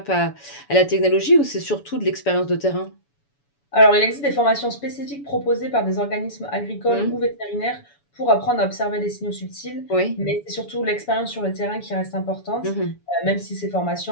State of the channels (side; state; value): right; late; 7.0 ms